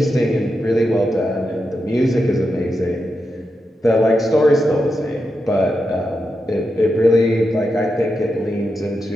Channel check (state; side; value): normal; both; correlation 0.87